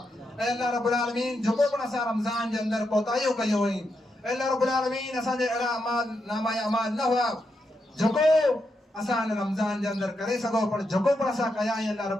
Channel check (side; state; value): both; normal; correlation 0.83